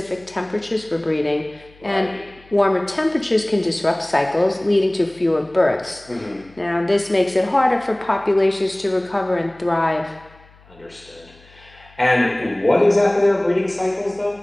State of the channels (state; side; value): noise; left; hum, 27 dB below the sound